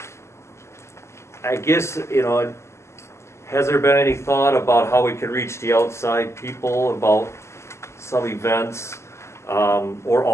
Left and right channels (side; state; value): right; late; 0.13 ms